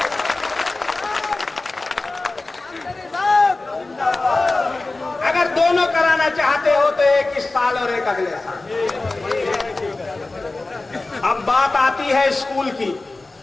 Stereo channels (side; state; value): right; quieter; 3.2 dB